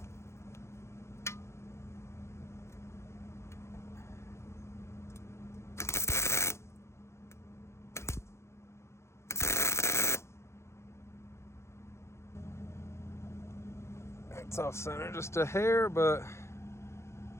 It's off center just a hair, but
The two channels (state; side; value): late; right; 0.13 ms